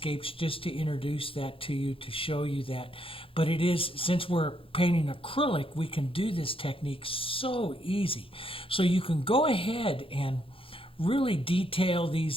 just to introduce that to you, to show you that. But it is, since we're painting acrylic, we can do this technique so easy. So you can go ahead and really detail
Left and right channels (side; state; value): right; late; 0.26 ms